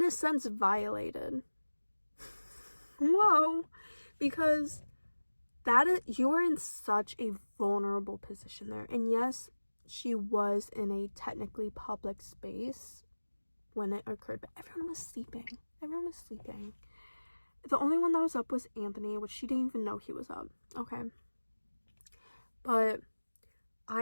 a sense, violated. Whoa. Because you were in such a vulnerable position there. And yes, she was in a technically public space when it occurred, but everyone was sleeping. The only one that was up was Anthony, which she didn't even know he was up. Okay. But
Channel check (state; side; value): inverted; both; correlation -1.00